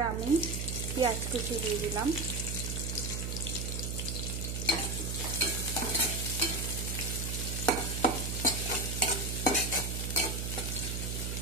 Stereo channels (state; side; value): noise; right; hum, 2 dB below the sound